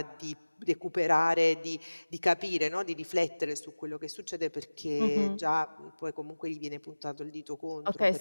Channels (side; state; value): both; inverted; correlation -1.00